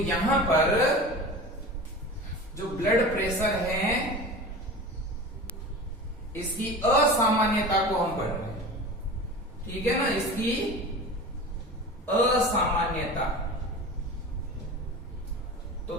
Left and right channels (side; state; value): both; normal; correlation 0.33